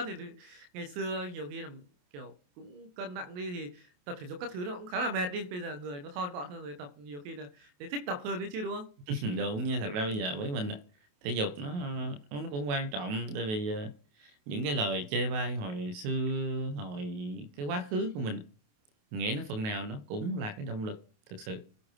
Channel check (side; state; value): left; late; 28 ms